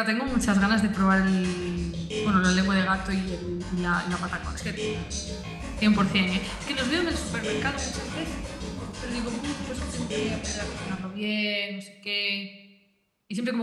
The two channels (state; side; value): identical; both; correlation 1.00